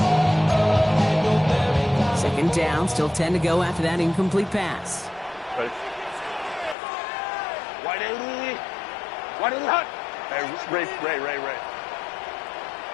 Second down, still 10 to go after that incomplete pass. Right. Wide 80. Wide 80 hot. Hey, Ray.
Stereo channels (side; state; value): right; drops out; at 6.8 s